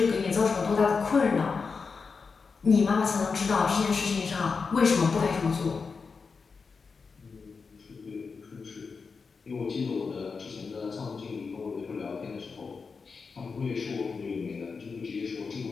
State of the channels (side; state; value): right; quieter; 5.0 dB